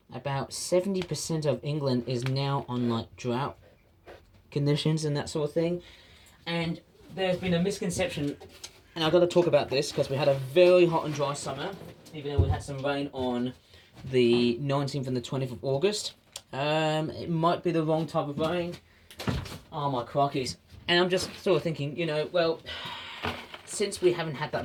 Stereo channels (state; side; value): identical; both; correlation 1.00